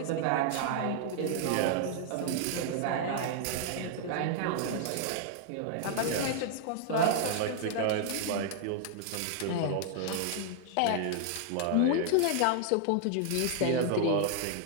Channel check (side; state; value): both; different; correlation -0.01